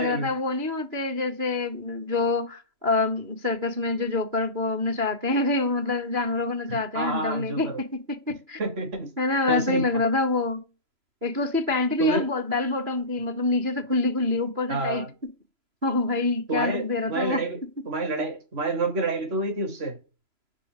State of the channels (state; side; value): late; left; 3.0 ms